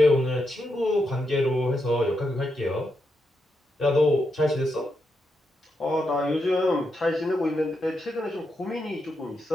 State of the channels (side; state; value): both; normal; correlation 0.84